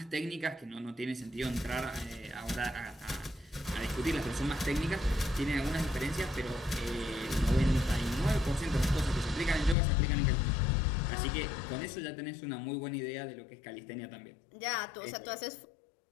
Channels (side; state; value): right; drops out; at 9.8 s